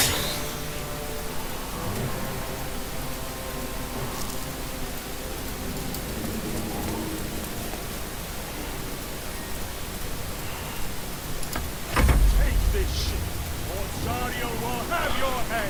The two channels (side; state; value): both; identical; correlation 1.00